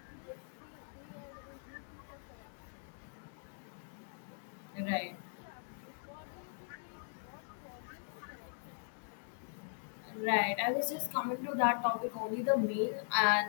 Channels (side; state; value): right; silent; digital silence